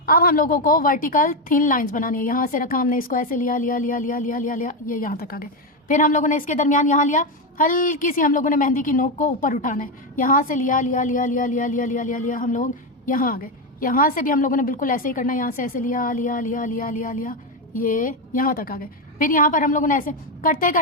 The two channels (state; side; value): normal; both; correlation 0.09